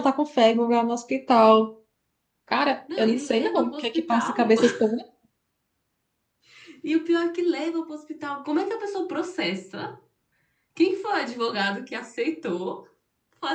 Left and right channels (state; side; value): identical; both; correlation 1.00